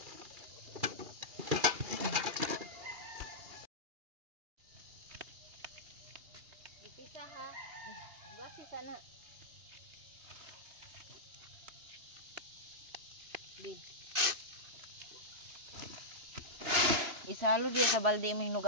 Ipisa ha. Gawasi sana. Bi. Isalo diya sa balde mo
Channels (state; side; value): late; left; 2.8 ms